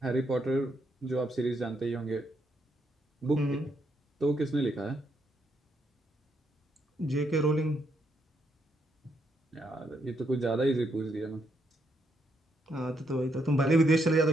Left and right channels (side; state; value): both; normal; correlation 0.77